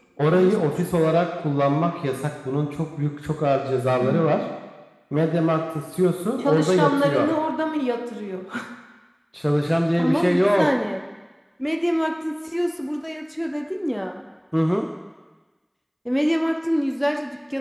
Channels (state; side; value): identical; both; correlation 1.00